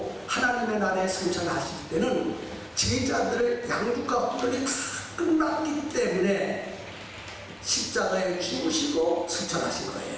하나님의 나라에 승천하실 때는 제자들을 양육과 훈련이 다 끝났기 때문에 십자가에 죽으시고 승천하신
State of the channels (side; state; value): both; identical; correlation 1.00